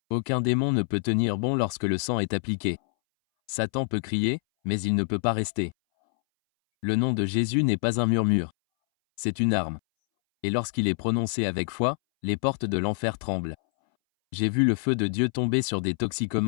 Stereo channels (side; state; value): right; silent; 61 dB below the other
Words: Aucun démon ne peut tenir bon lorsque le sang est appliqué. Satan peut crier, mais il ne peut pas rester. Le nom de Jésus n'est pas un murmure. C'est une arme. Et lorsqu'il est prononcé avec foi, les portes de l'enfer tremblent. J'ai vu le feu de Dieu tomber sur des